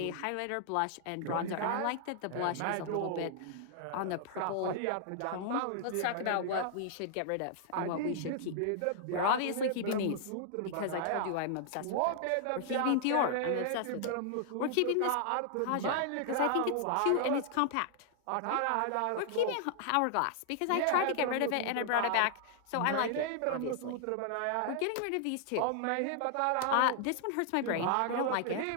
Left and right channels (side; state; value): both; different; correlation -0.01